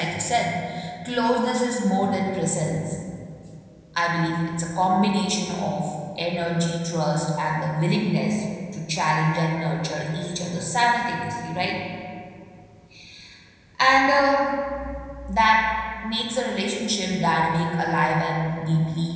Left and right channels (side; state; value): both; identical; correlation 1.00